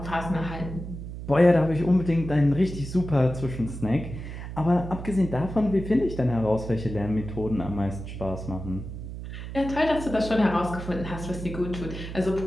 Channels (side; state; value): right; noise; hum, 9 dB below the sound